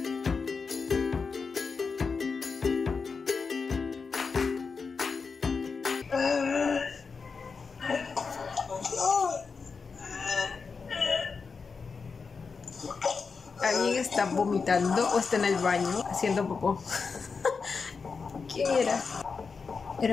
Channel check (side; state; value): right; quieter; 5.0 dB